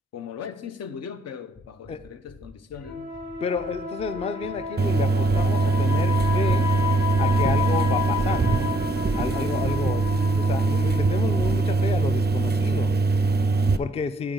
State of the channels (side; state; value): both; normal; correlation 0.68